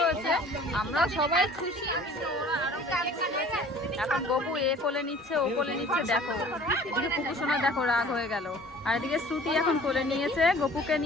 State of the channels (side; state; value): both; normal; correlation 0.48